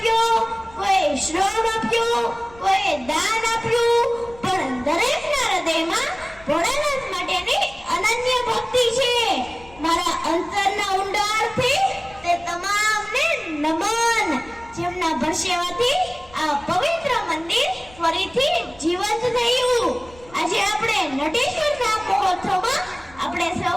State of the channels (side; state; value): left; noise; rumble, 23 dB below the sound